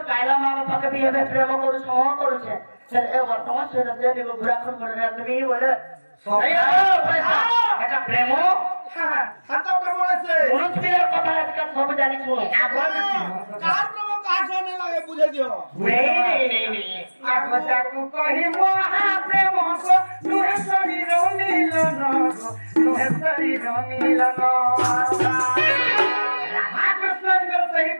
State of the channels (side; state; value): both; inverted; correlation -1.00